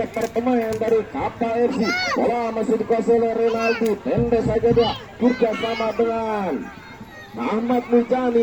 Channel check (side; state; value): both; identical; correlation 1.00